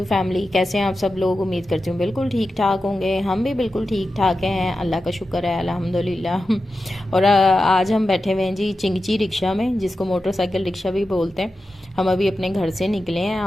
family, कैसे हैं आप सब लोग। उम्मीद करती हूँ बिल्कुल ठीक ठाक होंगे। हम भी बिल्कुल ठीक ठाक हैं, अल्लाह का शुक्र है, अल्हम्दुलिल्लाह। और आज हम बैठे हुए हैं जी चिंगची रिक्शा में, जिसको मोटरसाइकिल रिक्शा भी बोलते हैं। हम अभी अपने घर से निकले हैं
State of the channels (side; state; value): both; normal; correlation 0.92